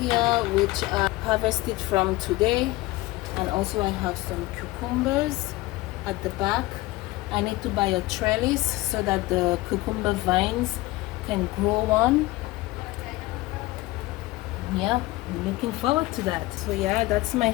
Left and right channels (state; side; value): quieter; right; 19.8 dB